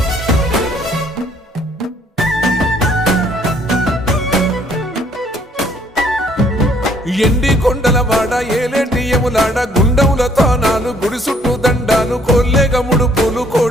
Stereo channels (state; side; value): normal; both; correlation 0.63